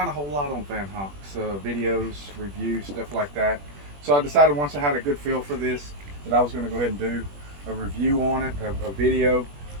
a whole lot on Vanhunks, videos, reviews, stuff like that. So I decided once I had a good feel for this that I was going to go ahead and do a review on it, a video,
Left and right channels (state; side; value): late; left; 21 ms